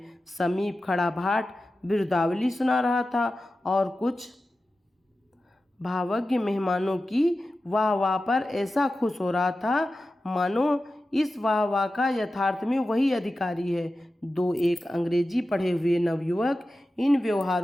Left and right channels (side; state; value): both; normal; correlation 0.93